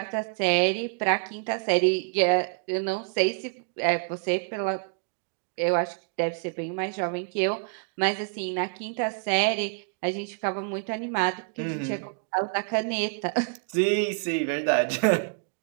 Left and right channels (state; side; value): quieter; left; 39.8 dB